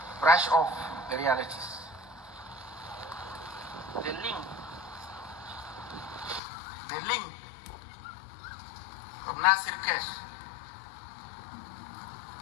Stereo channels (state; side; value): drops out; right; at 6.4 s